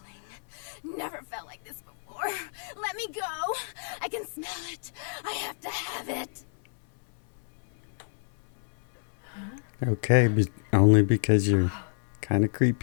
Never felt like this before. Let me go. I can smell it. I have to have it. Okay, only because you're kind of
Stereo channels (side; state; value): right; silent; 58 dB below the other